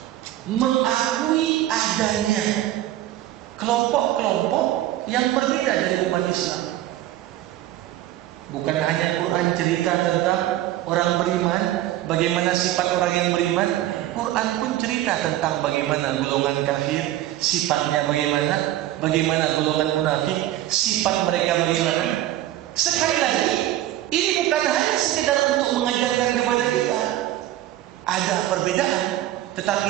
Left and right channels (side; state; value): left; quieter; 14.0 dB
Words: mengakui adanya kelompok-kelompok yang berbeda dari umat Islam. Bukan hanya Quran cerita tentang orang beriman, bagaimana sifat orang yang beriman, Quran pun cerita tentang bagaimana golongan kafir, sifatnya bagaimana golongan munafik, sifat mereka bagaimana. Sekali lagi, ini bukan hanya sekedar untuk mengajarkan kepada kita ada perbedaan,